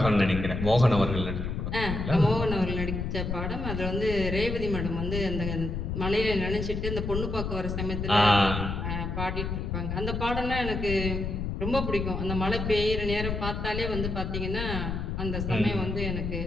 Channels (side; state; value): left; noise; rumble, 3 dB below the sound